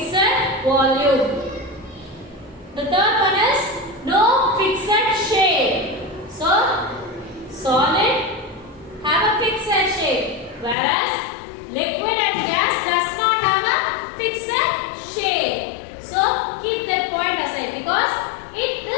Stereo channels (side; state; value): right; drops out; at 10.8 s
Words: volume. The third one is no fixed shape. So, solid have a fixed shape, whereas liquid and gas does not have a fixed shape. So, keep that point aside because